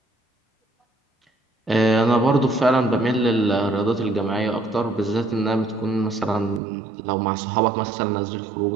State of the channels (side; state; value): left; drops out; at 6.6 s